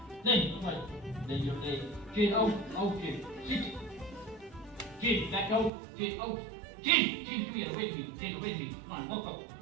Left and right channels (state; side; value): drops out; left; at 5.7 s